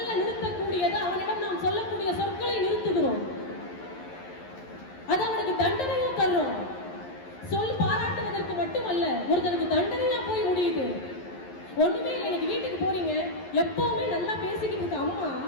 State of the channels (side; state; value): right; late; 11 ms